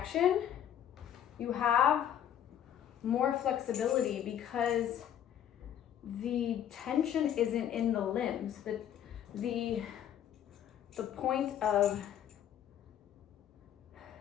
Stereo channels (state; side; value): quieter; right; 10.2 dB